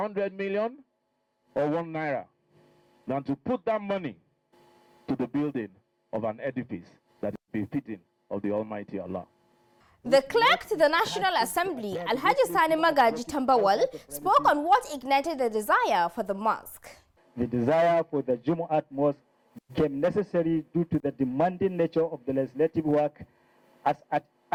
million or 1 naira, than to put that money to the building of an edifice that is befitting of the Almighty Allah. The clerk to the National Assembly, Alhaji Sani Magaji Tambawal, spoke on what ignited the desire for the mosque. The desire for the Jumu'at mosque became necessary due to the demanding nature of the legislative work as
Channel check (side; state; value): both; identical; correlation 1.00